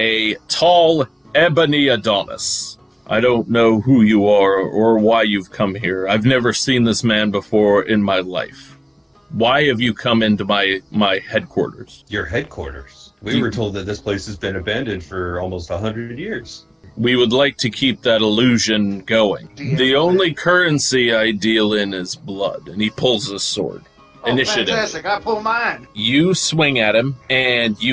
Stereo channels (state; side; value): identical; both; correlation 1.00